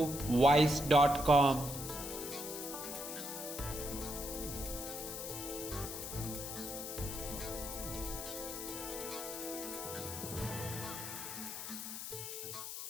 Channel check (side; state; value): left; noise; hiss, 6 dB below the sound